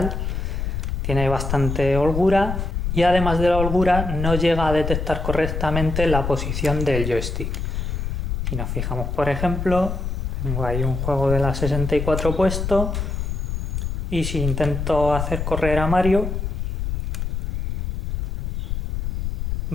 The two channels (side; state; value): left; noise; rumble, 2 dB below the sound